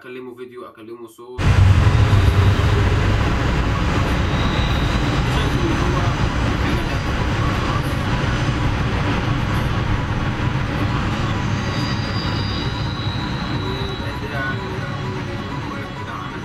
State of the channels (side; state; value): both; identical; correlation 1.00